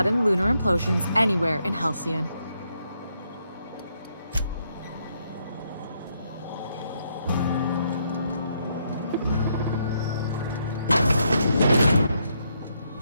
lunar implosions anywhere in Halcyon.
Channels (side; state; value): both; inverted; correlation -0.76